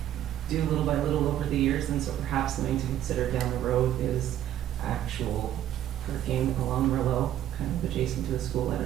do little by little over the years, and so perhaps something to consider down the road is actual parking along Merlot, kind of adjacent to the school. I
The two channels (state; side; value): quieter; left; 11.8 dB